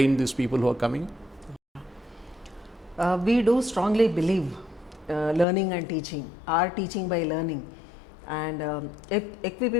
these people who are coming? We do strongly believe learning and teaching, or teaching by learning, and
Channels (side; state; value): right; drops out; at 5.5 s